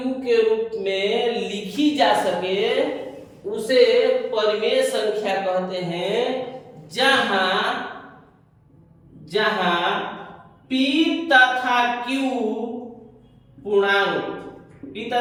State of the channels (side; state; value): both; identical; correlation 1.00